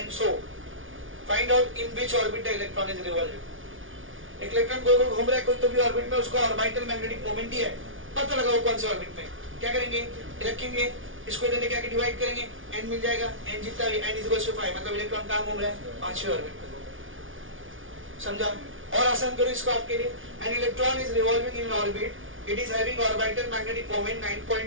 so. Find out in which orbit the electron is revolving. एक इलेक्ट्रॉन गोल गोल घूम रहा है कोई तो भी ऑर्बिट में, उसका ऑर्बिटल मैग्नेटिक मोमेंट ही है. पता लगाओ कौन से ऑर्बिट में. क्या करेंगे? रखेंगे, इसको इधर लेके आके डिवाइड करेंगे, n मिल जाएगा. n जितना भी n इक्वल्स टू 5, मतलब इलेक्ट्रॉन कहाँ घूम रहा है? पांचवें ऑर्बिट में. समझा? और आसान करो इसको आपके लिए. An electron is revolving in an orbit. It is having orbital magnetic moment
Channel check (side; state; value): left; late; 0.57 ms